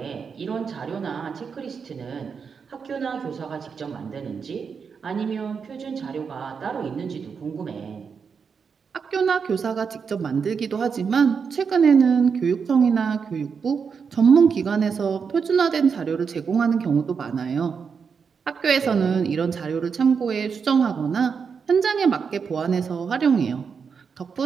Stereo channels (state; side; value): quieter; left; 6.0 dB